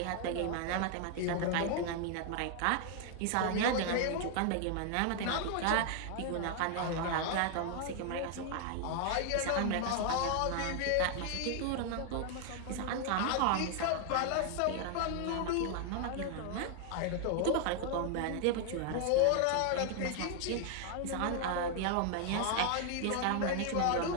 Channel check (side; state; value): both; different; correlation 0.00